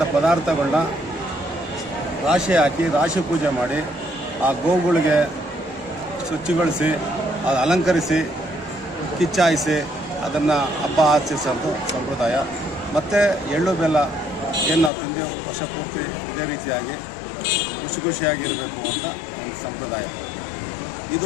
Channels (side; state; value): right; drops out; at 14.9 s